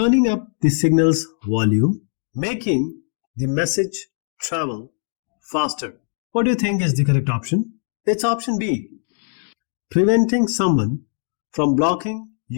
up the signal's volume, making the message travel faster. What do you think is the correct option? It's option B, preventing someone from blocking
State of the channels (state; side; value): silent; right; digital silence